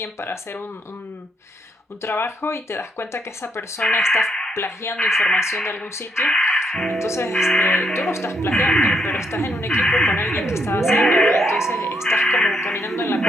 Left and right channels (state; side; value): normal; both; correlation 0.75